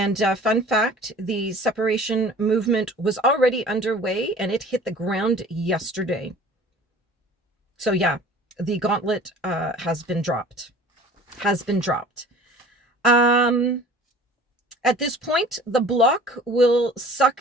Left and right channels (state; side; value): normal; both; correlation 0.46